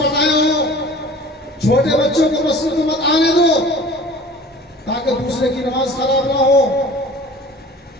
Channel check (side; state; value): both; normal; correlation 0.43